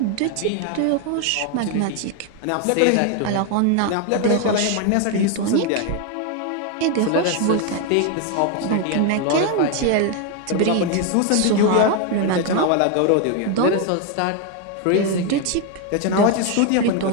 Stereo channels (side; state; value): both; different; correlation 0.01